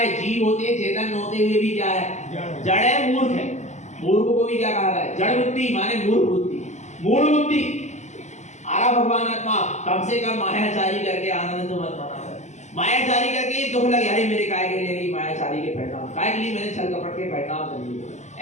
जीव होते, चेतन होते हुए भी क्या है? जड़ है, मूर्ख है। मूर्ख को भी क्या कहा है? जड़ बुद्धि माने मूर्ख बुद्धि, मूढ़ बुद्धि। आरा भगवान आत्मा, कम से कम मायाचारी करके आनंद तो मत माना। मायाचारी करके दुख लगे, अरे मेरे काय के लिए मायाचारी के परिणाम, काय के लिए मैंने छल कपट के परिणाम कर लिए,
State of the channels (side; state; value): right; late; 0.34 ms